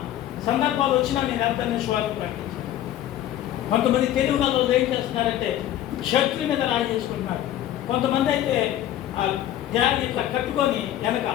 సందర్భాలు వచ్చినా నేను వెళ్తానే సువార్త ప్రకటించాను. కొంతమంది తెలుగు వాళ్ళు ఏం చేస్తున్నారంటే షర్ట్ల మీద రాయి చేసుకుంటున్నారు. కొంతమంది అయితే ఆ బ్యాగ్ ఇట్లా కట్టుకొని వెనక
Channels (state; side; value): quieter; right; 12.5 dB